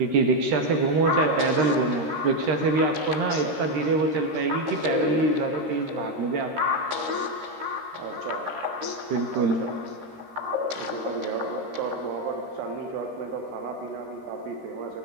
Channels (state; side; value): late; left; 13 ms